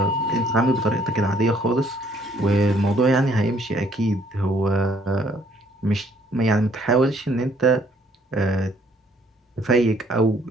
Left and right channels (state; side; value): normal; both; correlation 0.64